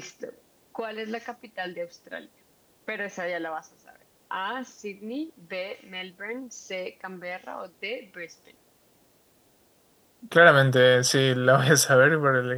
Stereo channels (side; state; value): both; identical; correlation 1.00